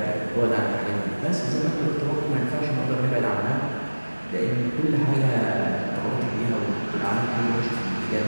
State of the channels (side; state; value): both; inverted; correlation -1.00